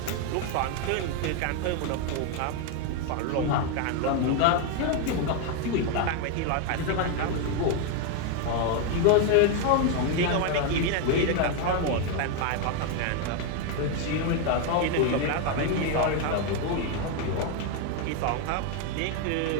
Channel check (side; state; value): both; different; correlation 0.01